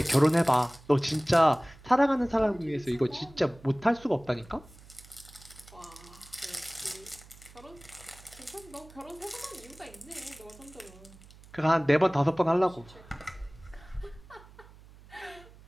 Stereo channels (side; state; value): right; noise; hum, 22 dB below the sound